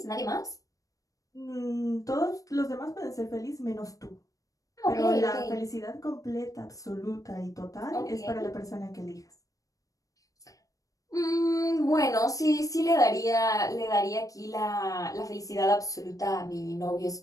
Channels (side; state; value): right; late; 0.16 ms